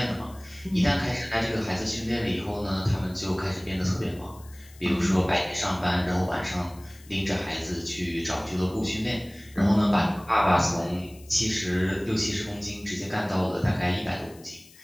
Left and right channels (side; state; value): left; noise; hiss, 24 dB below the sound